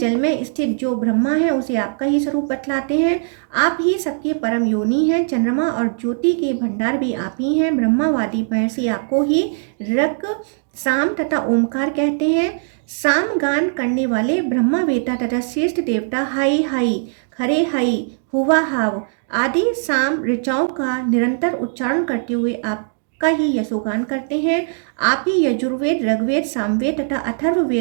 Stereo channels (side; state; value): left; silent; digital silence